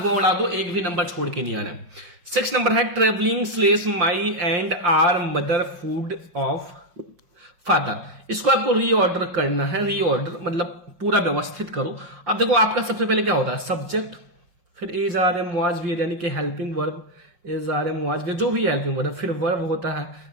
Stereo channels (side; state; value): left; late; 5.8 ms